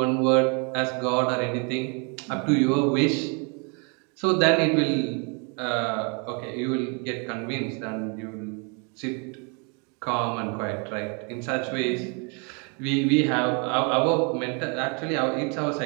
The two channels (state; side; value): quieter; left; 35.2 dB